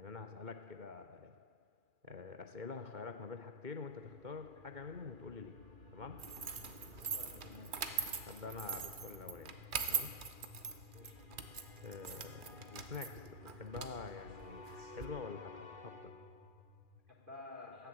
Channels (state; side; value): late; left; 2.4 ms